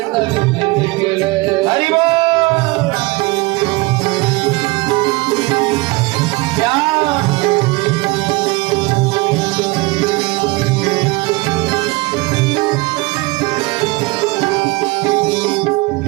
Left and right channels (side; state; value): left; quieter; 23.1 dB